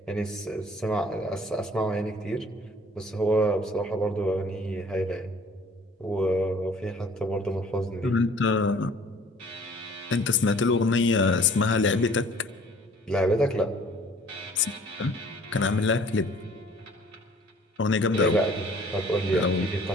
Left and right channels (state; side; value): normal; both; correlation 0.52